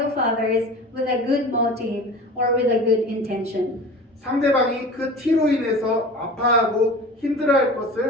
others with a good motive or with a good intention. 상대방이 그 티로 인해서 아파하고 힘들어할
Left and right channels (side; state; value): both; normal; correlation 0.37